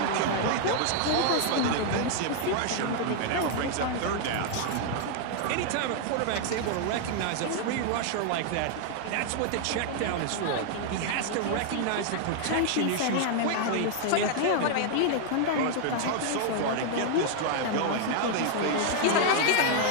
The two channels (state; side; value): different; both; correlation 0.00